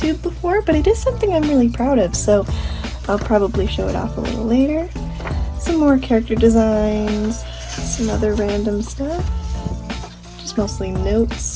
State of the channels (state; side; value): identical; both; correlation 1.00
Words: before, but it is something I'm really proud of, so I'll probably show it off a little later. Some more character designs, some other random stuff. Just mostly